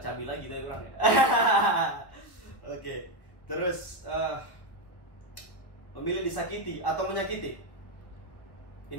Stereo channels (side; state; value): right; late; 1.4 ms